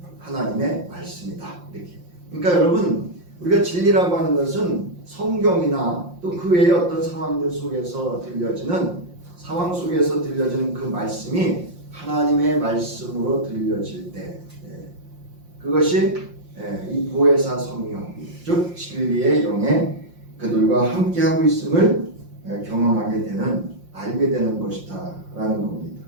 하나님의 말씀이다 이렇게. 그러니까 여러분 우리가 진리라고 하는 것은 성경이나 또 그 외의 어떤 상황들 속에서 들려지는 그 말씀이 하나님의 말씀으로 들려질 때 그것이 이 보혜사 성령 즉 진리의 영에 그들과 함께하고 있음을 경험하게 되는 알게 되는 것이다 라는 겁니다.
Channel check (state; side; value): late; left; 5.7 ms